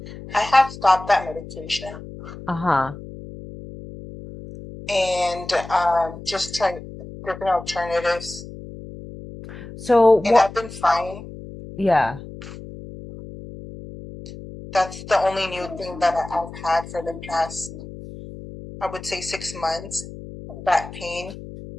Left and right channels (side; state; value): left; noise; hum, 13 dB below the sound